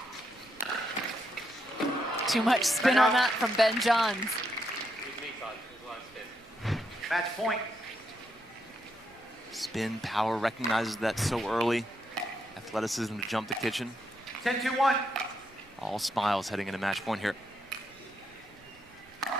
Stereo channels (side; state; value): right; noise; rumble, 29 dB below the sound